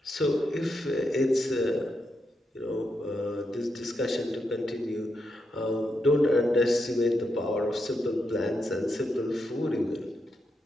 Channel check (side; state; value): both; normal; correlation 0.84